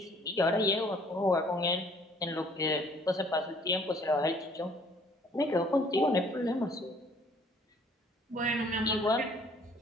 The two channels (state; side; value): normal; both; correlation 0.58